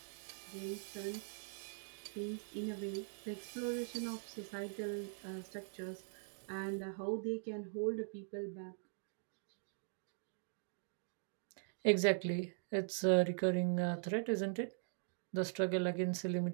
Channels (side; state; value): left; silent; digital silence